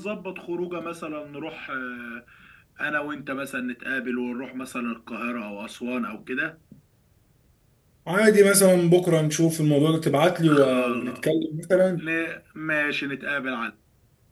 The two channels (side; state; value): both; identical; correlation 1.00